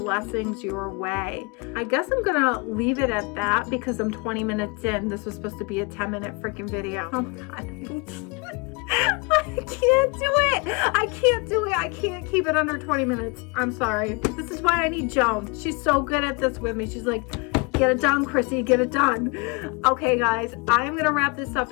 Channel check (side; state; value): right; quieter; 28.8 dB